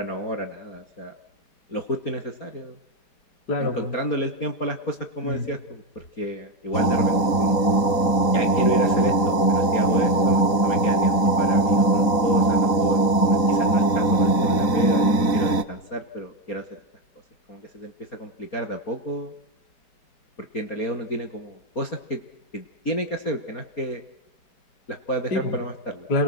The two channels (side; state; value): right; late; 4.1 ms